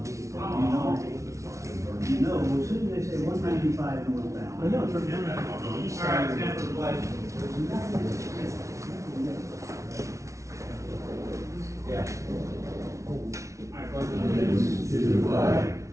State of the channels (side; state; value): left; late; 0.14 ms